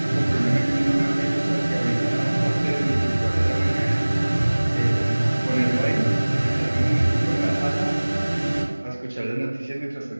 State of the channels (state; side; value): inverted; both; correlation -1.00